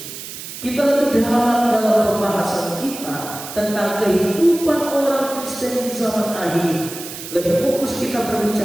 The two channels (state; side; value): noise; right; hiss, 11 dB below the sound